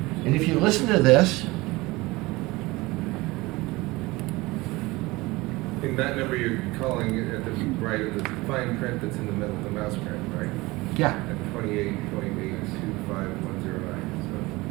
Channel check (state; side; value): quieter; left; 21.5 dB